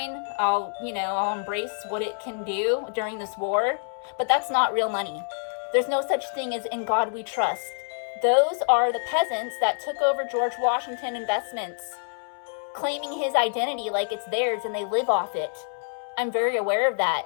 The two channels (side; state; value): right; silent; 61 dB below the other